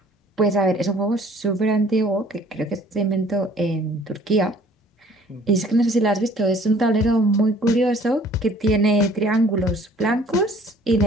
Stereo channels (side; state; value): both; normal; correlation 0.54